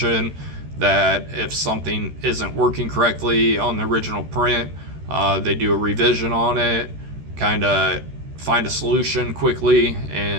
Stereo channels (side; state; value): left; late; 13 ms